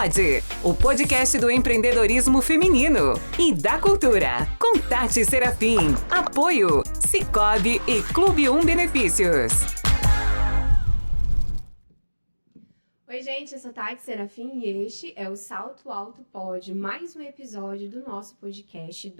o podcast do empreendedorismo feminino e da cultura, com Tati Serafim, apoio Sicoob e Clube 1 Benefícios. Oi gente, eu sou Tati Serafim e este é o Salto Alto Pod, mais um episódio do nosso podcast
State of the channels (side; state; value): both; inverted; correlation -1.00